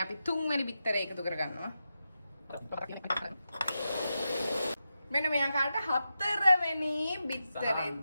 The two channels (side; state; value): both; inverted; correlation -0.89